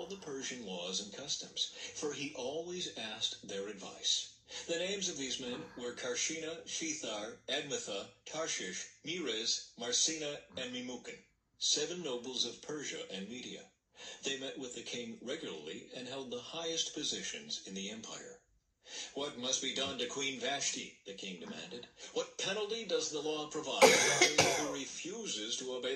the Persian laws and customs, for he always asked their advice. The names of these men were Karshina, Shethar, Admatha, Tarshish, Meres, Marsina, and Memucan, 7 nobles of Persia and Media. They met with the king regularly and held the highest positions in the empire. "What must be done to Queen Vashti?" the king demanded. "What penalty does the law provide for anyone who refuses to obey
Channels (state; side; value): identical; both; correlation 1.00